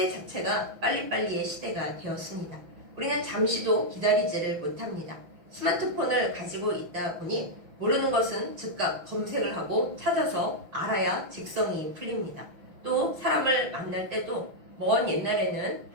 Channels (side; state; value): left; late; 6.1 ms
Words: 자체가 빨리빨리의 시대가 되었습니다. 우리는 잠시도 기다리지를 못합니다. 스마트폰을 가지고 있다 보니 모르는 것은 즉각 검색을 하고 찾아서 알아야 직성이 풀립니다. 또 사람을 만날 때도 먼 옛날에는